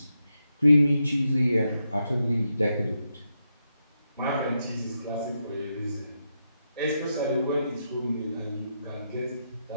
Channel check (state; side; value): inverted; both; correlation -0.84